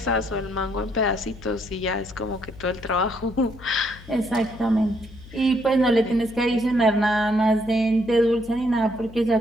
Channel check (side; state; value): left; noise; hum, 18 dB below the sound